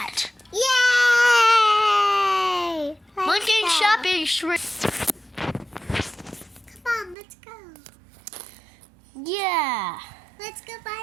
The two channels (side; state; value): left; drops out; at 7.2 s